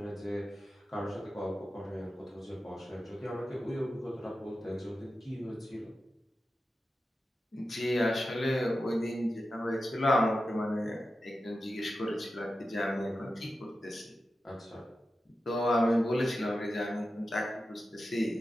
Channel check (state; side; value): normal; both; correlation 0.92